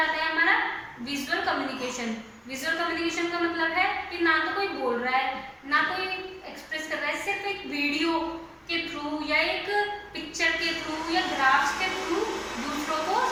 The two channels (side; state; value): both; identical; correlation 1.00